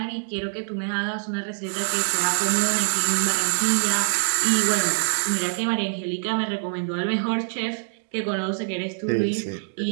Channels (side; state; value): left; silent; digital silence